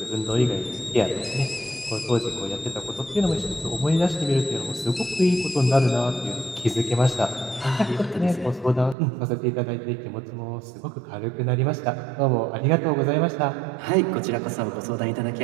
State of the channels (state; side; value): drops out; left; at 9.0 s